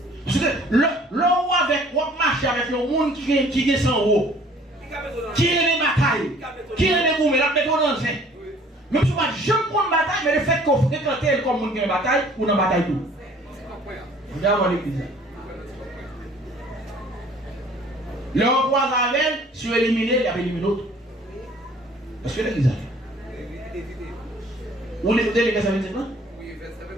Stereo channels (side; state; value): both; normal; correlation 0.54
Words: Parce que l'on avec ou marcher avec le monde qui est sans eau. Qui est les batailles. Qui est les gourmets la méthode dans le même si je ne prends bataille mais le fait qu'on fréquente comme monde qui est bataille ou dans bataille tout. Vous avez l'église. Le roi avec si vous éliminez, il y a éliminé l'autre. Est-ce que l'église a? Vous l'écoutez les versets 25 ans? Oui, verset